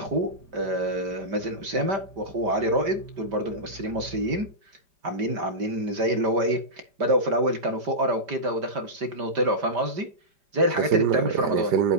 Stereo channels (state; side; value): late; left; 5.0 ms